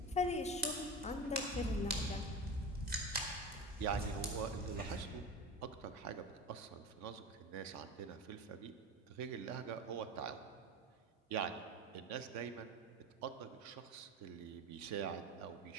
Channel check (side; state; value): both; normal; correlation 0.28